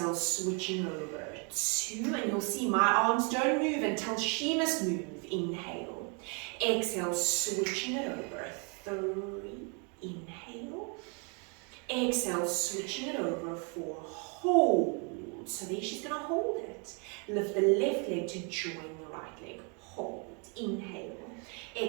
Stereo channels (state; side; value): quieter; left; 35.4 dB